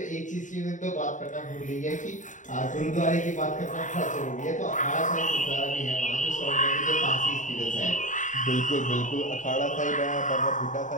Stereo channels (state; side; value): late; right; 0.36 ms